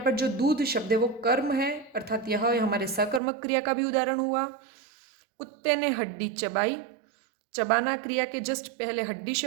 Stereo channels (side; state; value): left; drops out; at 3.2 s